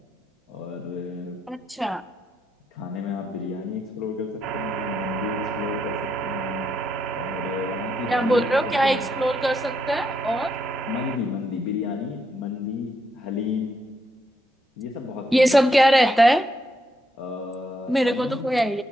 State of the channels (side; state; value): both; normal; correlation 0.78